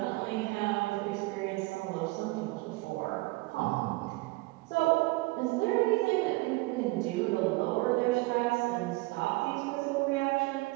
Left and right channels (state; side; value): quieter; left; 22.7 dB